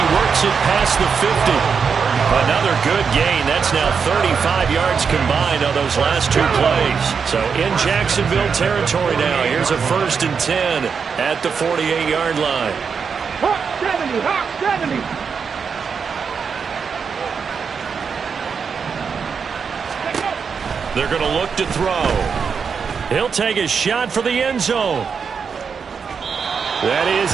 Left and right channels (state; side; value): quieter; left; 6.1 dB